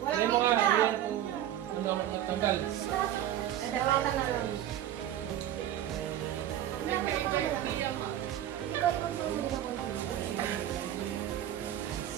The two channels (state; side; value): quieter; left; 11.8 dB